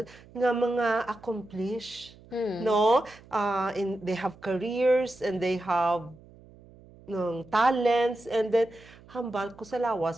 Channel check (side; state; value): right; noise; hum, 23 dB below the sound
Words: nga mga accomplished, no? They have careers and they have talents, and then hambal ko sa